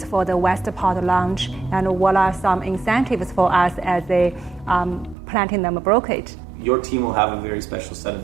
for the Westport launch, and what are some incentives for us as a platinum brokerage? Your team will have a very special set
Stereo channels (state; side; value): drops out; left; at 5.2 s